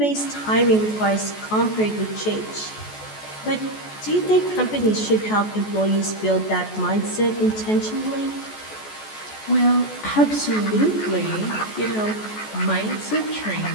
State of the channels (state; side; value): late; right; 14 ms